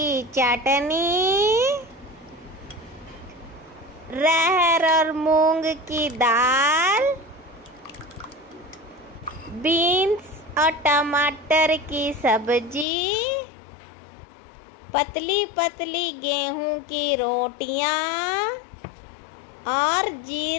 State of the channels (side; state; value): right; drops out; at 12.9 s